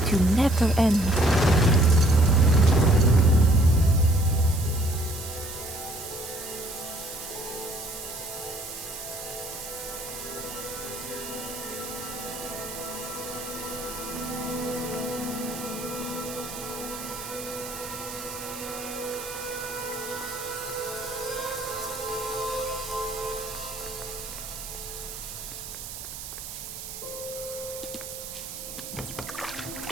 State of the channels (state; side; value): noise; right; hiss, 10 dB below the sound